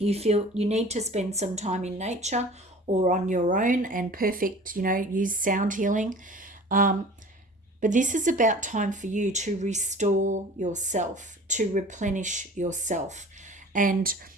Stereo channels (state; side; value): normal; both; correlation 0.43